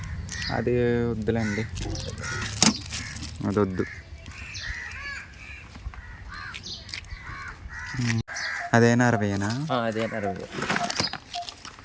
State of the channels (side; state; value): both; identical; correlation 1.00